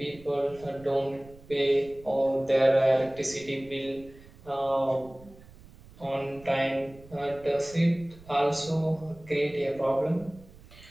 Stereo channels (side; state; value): right; noise; rumble, 22 dB below the sound